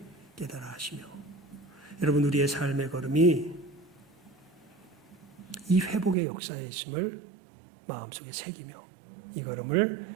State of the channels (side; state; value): left; drops out; at 6.2 s